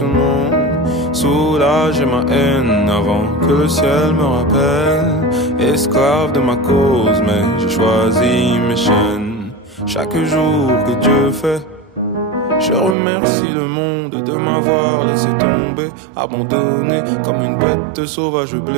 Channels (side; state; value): left; drops out; at 13.0 s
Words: monde. Soulager ma haine avant que le ciel me rappelle. Esclave de ma cause, mais j'ai choisi mes chaînes. Chaque jour que Dieu fait, je remercie le monde de m'avoir laissé tomber, abandonné comme une bête sauvage